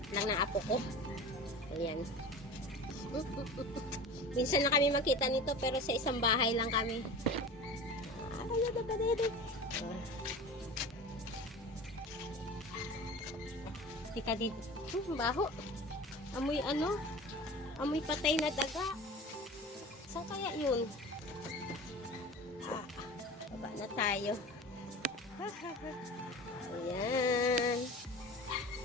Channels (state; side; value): normal; both; correlation 0.35